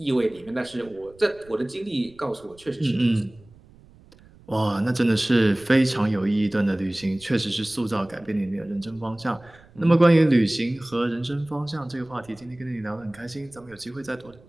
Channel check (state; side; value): noise; right; rumble, 25 dB below the sound